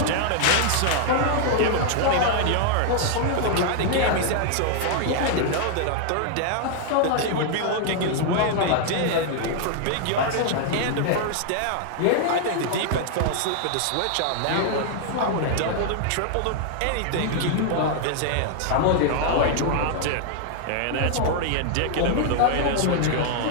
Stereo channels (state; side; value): different; both; correlation 0.00